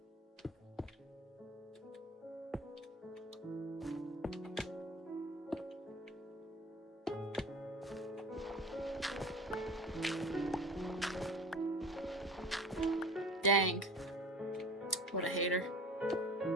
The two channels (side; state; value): both; normal; correlation 0.41